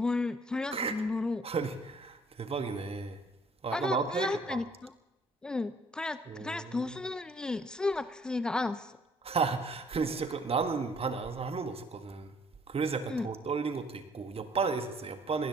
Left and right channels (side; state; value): both; normal; correlation 0.60